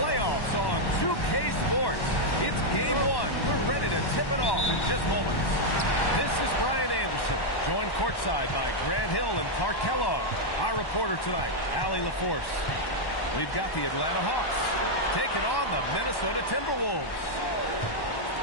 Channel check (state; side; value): late; right; 1.1 ms